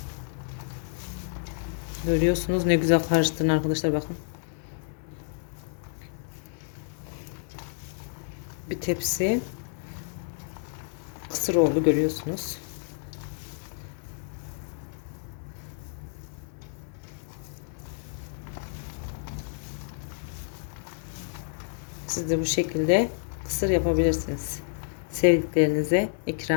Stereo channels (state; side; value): silent; right; digital silence